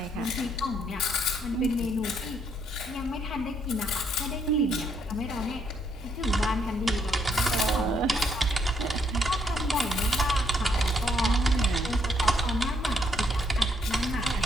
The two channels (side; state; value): both; normal; correlation 0.72